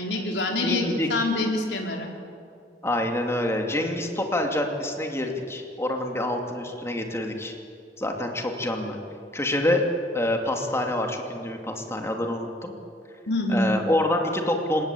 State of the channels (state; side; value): normal; both; correlation 0.54